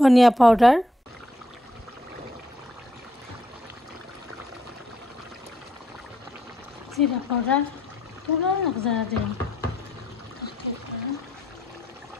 পাউডার, জিরা পাউডার পুরো একজারা দিলাম,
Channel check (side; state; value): both; normal; correlation 0.73